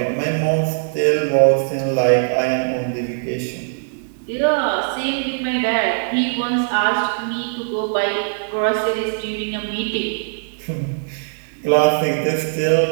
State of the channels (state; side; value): silent; left; 66 dB below the other